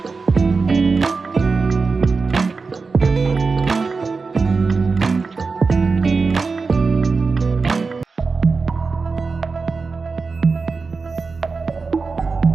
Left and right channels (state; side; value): quieter; left; 4.4 dB